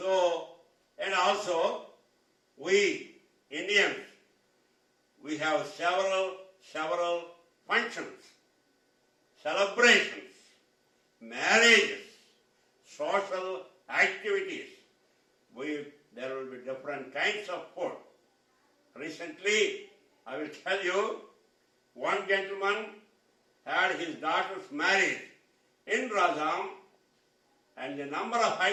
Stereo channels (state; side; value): identical; both; correlation 1.00